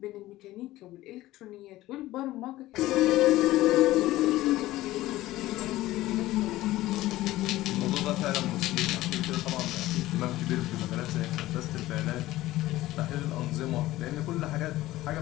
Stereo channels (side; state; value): right; quieter; 16.6 dB